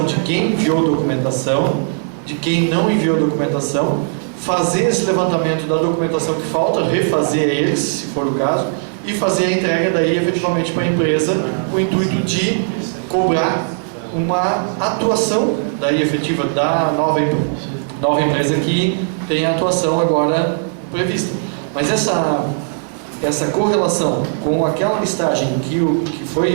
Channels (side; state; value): left; silent; digital silence